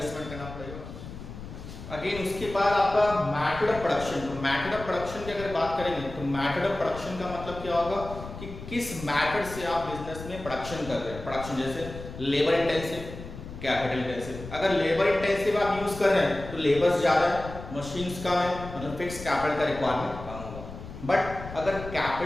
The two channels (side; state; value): left; noise; rumble, 12 dB below the sound